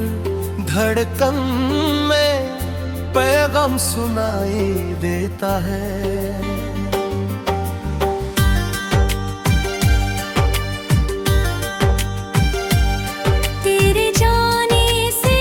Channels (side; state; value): both; identical; correlation 1.00